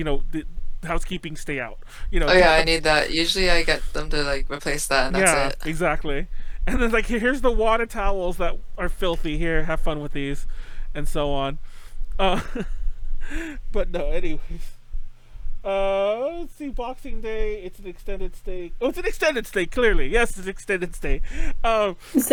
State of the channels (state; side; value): identical; both; correlation 1.00